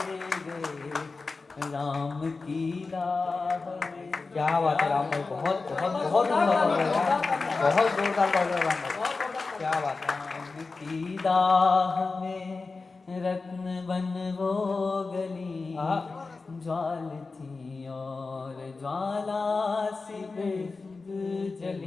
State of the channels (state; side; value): quieter; right; 4.0 dB